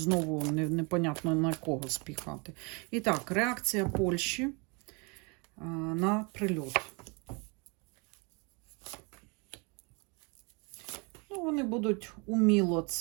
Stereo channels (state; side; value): quieter; left; 31.0 dB